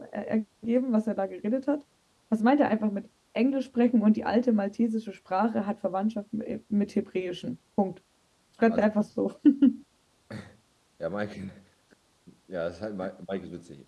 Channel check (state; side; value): identical; both; correlation 1.00